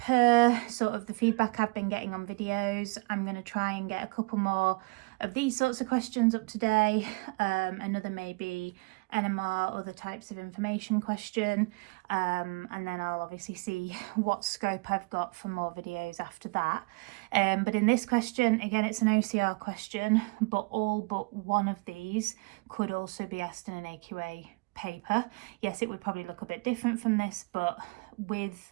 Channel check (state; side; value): quieter; left; 29.2 dB